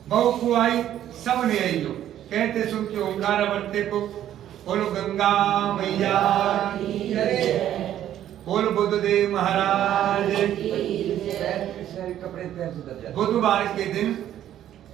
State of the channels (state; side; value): quieter; left; 11.5 dB